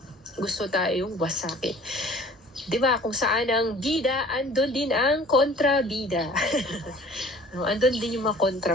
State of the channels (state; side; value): normal; both; correlation 0.50